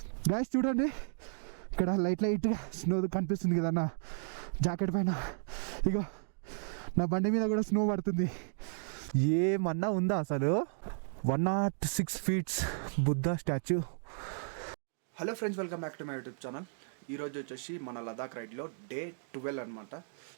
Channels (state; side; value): silent; left; digital silence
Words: Guys చూడండి, ఇక్కడ light snow కనిపిస్తుంది కదా నా జాకెట్ పైన. ఇక నా బండి మీద కూడా స్నో పడుతుంది. ఏమన్నా ఉందా అసలు? 106 feet Buddha statue. Hello friends, welcome back to my YouTube channel. ఈరోజు వచ్చేసి మన లదాఖ్ రైడ్లో డే 12 అనమాట.